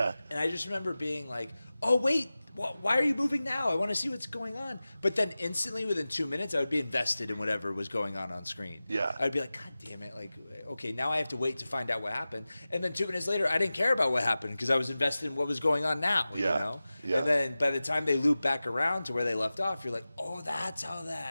And I just remember being like, oh wait, why are you moving now? I want to see what's going on. But then instantly, within 2 minutes, I would be invested in whatever was going on screen. Yeah. I'd be like, God damn it! Like, okay, now I have to wait to find out what happened. And then 2 minutes later, I didn't care about what happened because I was invested in what was going on now. Yeah. You know. Yeah. And then by the time they loop back around to where they left off, you're like, oh, that's how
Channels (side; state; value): both; inverted; correlation -0.96